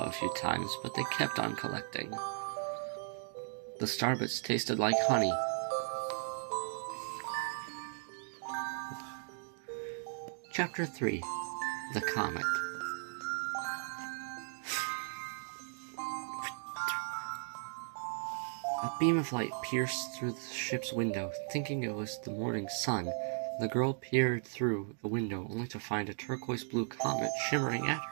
a few times, but they kept on collecting. The starbits tasted like honey. Chapter 3. The Comet. A beam of light pierced through the ship's window. Thinking it was the morning sun, the girl peered through the window only to find a turquoise-blue comet shimmering at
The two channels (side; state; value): left; silent; digital silence